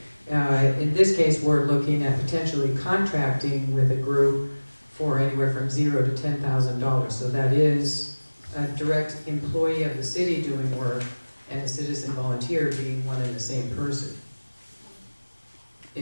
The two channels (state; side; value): inverted; both; correlation -1.00